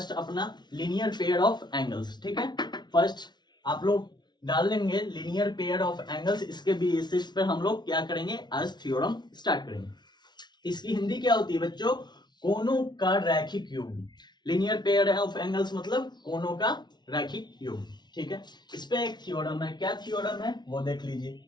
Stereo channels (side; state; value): right; late; 0.20 ms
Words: अपना लीनियर पेयर ऑफ एंगल्स। ठीक है, फर्स्ट आप लोग डाल लेंगे लीनियर पेयर ऑफ एंगल्स। इसके बेसिस पर हम लोग क्या करेंगे? आज थ्योरम स्टार्ट करेंगे। इसकी हिंदी क्या होती है बच्चों? कोनों का रैखिक योग। लीनियर पेयर ऑफ एंगल्स मतलब कोनों का रैखिक योग। ठीक है, इस पे एक थ्योरम है। क्या थ्योरम है वो देख लीजिए।